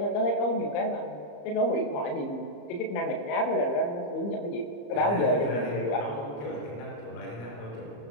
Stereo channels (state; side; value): late; right; 34 ms